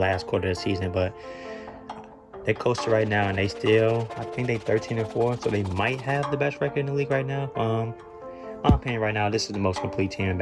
quarter of the season. But they coasting right now, and they still, I think they 13-4, so they might have the best record in the league right now. My opinion right now, this is the most complete team in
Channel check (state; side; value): identical; both; correlation 1.00